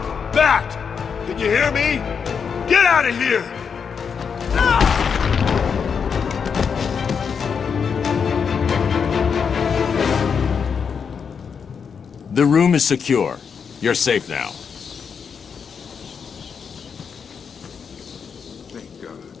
Bat! Can you hear me? Get out of here! The room is secure. You're safe now. Thank God.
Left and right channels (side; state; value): right; quieter; 6.4 dB